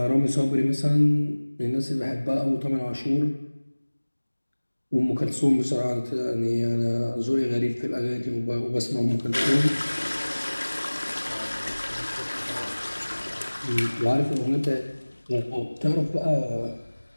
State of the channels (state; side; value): inverted; both; correlation -1.00